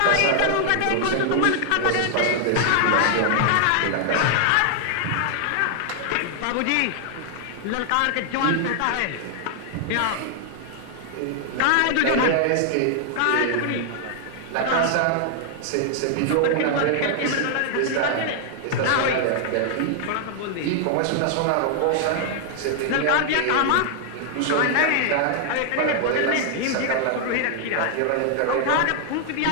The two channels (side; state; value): both; different; correlation 0.00